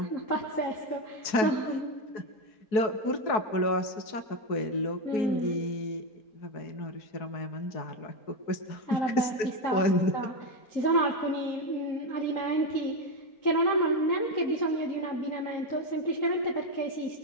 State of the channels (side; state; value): right; late; 4.6 ms